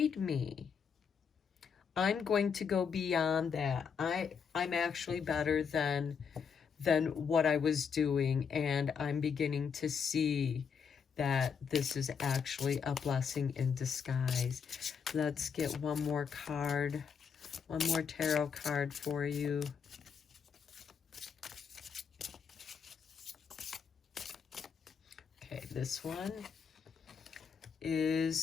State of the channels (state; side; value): quieter; right; 6.5 dB